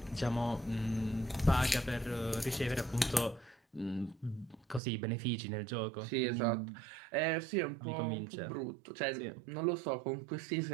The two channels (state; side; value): drops out; left; at 4.8 s